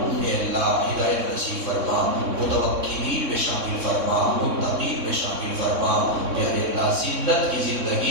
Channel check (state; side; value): late; left; 3.6 ms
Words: اے اللہ ہدایت نصیب فرما، متوکلین میں شامل فرما، متقین میں شامل فرما۔ پیارے اللہ ذلت کی